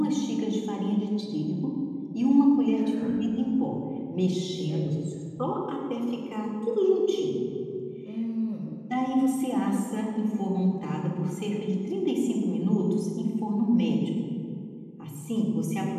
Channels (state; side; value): identical; both; correlation 1.00